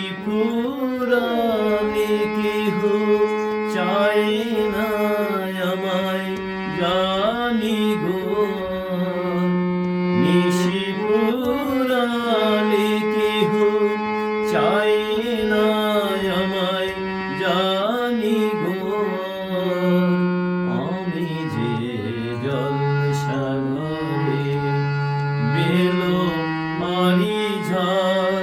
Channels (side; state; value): both; identical; correlation 1.00